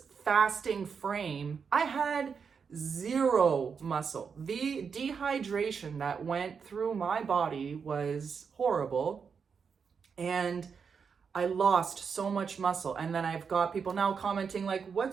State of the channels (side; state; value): left; quieter; 6.1 dB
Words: fasting frame, I had zero muscle. The dehydration that went through my body was horrible. And I lost so much muscle. And then I've got people now commenting like,